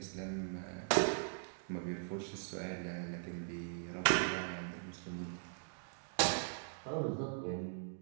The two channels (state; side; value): silent; left; digital silence